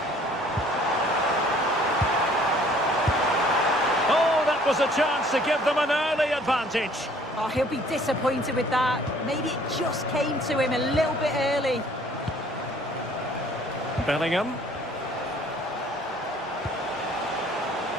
Oh, that was a chance to give them an early advantage. Oh, he'll be disappointed with that. Maybe it just came to him a little bit early. Bellingham.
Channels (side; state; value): both; normal; correlation 0.57